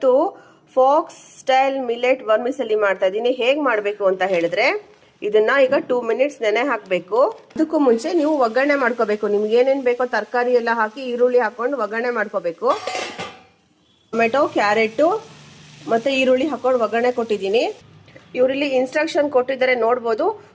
fox style millet ವರ್ಮಿಸೆಲಿ ಮಾಡ್ತಾ ಇದ್ದೀನಿ. ಹೇಗೆ ಮಾಡಬೇಕು ಅಂತ ಹೇಳಿದ್ರೆ, ಇದನ್ನ ಈಗ 2 ಮಿನಿಟ್ಸ್ ನೆನೆ ಹಾಕಬೇಕು. ಅದಕ್ಕೂ ಮುಂಚೆ ನೀವು ಒಗ್ಗರಣೆ ಮಾಡ್ಕೋಬೇಕು. ನಿಮ್ಗೆ ಏನೇನು ಬೇಕೋ ತರಕಾರಿ ಎಲ್ಲ ಹಾಕಿ ಈರುಳ್ಳಿ ಹಾಕೊಂಡು ಒಗ್ಗರಣೆ ಮಾಡ್ಕೋಬೇಕು. ಟೊಮೆಟೊ, ಕ್ಯಾರೆಟ್ ಮತ್ತೆ ಈರುಳ್ಳಿ ಹಾಕೊಂಡು ಒಗ್ಗರಣೆ ಕೊಟ್ಟಿದ್ದೀನಿ. ಇವರಲ್ಲಿ ಇನ್ಸ್ಟ್ರಕ್ಷನ್ ಕೊಟ್ಟಿದ್ದಾರೆ ನೋಡ್ಬೋದು.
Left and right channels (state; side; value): identical; both; correlation 1.00